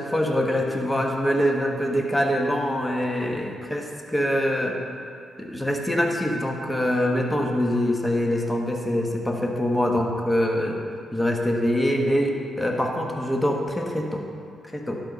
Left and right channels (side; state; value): both; normal; correlation 0.88